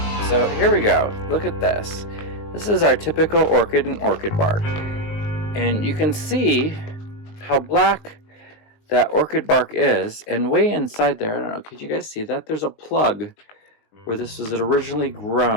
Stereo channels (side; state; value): right; late; 20 ms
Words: So here we go. Look at this. This is our typical orchid and orchid bark. And you can see how black that orchid bark is, and way inside there, I don't know, could you guys see that? There's a plug where this was originally